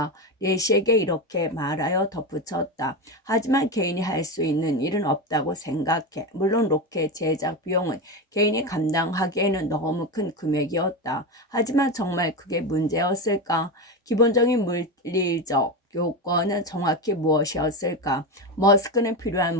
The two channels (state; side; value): normal; both; correlation 0.17